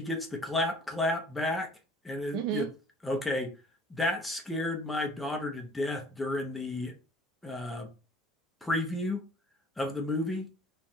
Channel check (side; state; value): both; normal; correlation 0.52